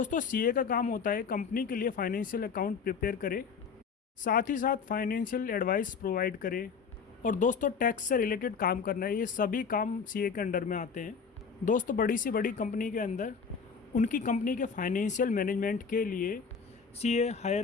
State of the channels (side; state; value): right; quieter; 5.9 dB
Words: CA का काम होता है कंपनी के लिए फाइनेंशियल अकाउंट प्रिपेयर करे, साथ ही साथ फाइनेंशियल एडवाइस प्रोवाइड करे, और दोस्तों टैक्स से रिलेटेड काम करना है। ये सभी काम CA के अंडर में आते हैं। दोस्तों बड़ी से बड़ी कंपनी के अंदर उनकी कंपनी के फाइनेंशियल मैनेजमेंट के लिए CA